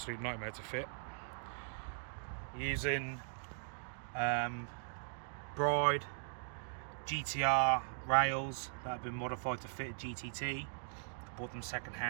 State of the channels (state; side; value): silent; left; digital silence